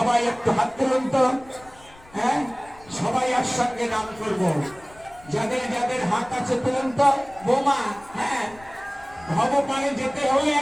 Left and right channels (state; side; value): noise; left; rumble, 24 dB below the sound